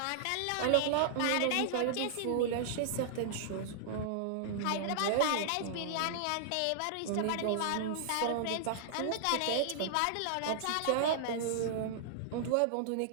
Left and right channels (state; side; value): different; both; correlation -0.01